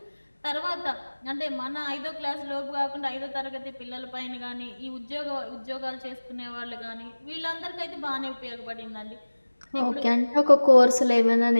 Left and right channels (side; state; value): both; inverted; correlation -1.00